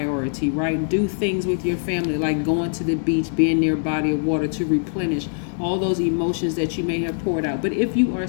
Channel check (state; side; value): silent; right; 58 dB below the other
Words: right? Do things with your family like going to the beach, being near a body of water to replenish all those emotions that you may have poured out. But if you are